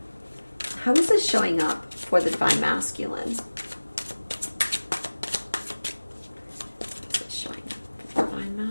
How is this showing up for the divine masculine?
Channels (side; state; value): both; inverted; correlation -1.00